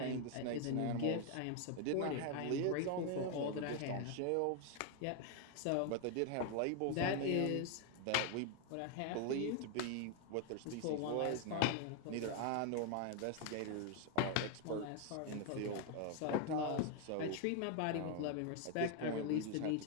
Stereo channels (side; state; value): both; different; correlation 0.01